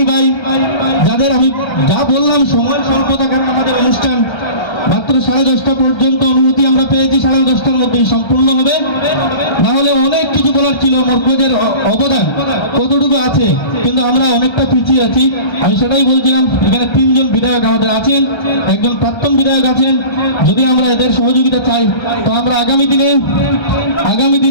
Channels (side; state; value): right; late; 1.3 ms